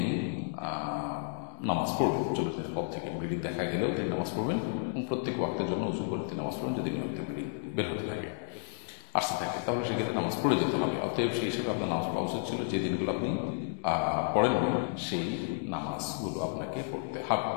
নামাজ পড়বেন। 40 দিনের পর থেকে ব্লিডিং দেখা গেলেও তিনি নামাজ পড়বেন এবং প্রত্যেক ওয়াক্তের জন্য উযু করে তিনি নামাজ পড়বেন। যদি নিয়মিত ব্লিডিং বের হতে থাকে, আসতে থাকে, তাহলে সেক্ষেত্রে নামাজ পড়ে যেতে হবে। অতএব সেই হিসেবে আপনার নামাজ পড়া উচিত ছিল। যে দিনগুলো আপনি পড়েননি সেই নামাজগুলো আপনাকে পড়তে হবে।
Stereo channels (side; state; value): right; silent; digital silence